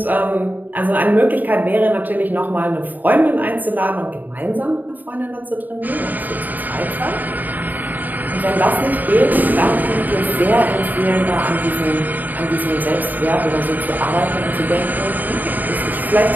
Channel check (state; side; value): late; left; 0.085 ms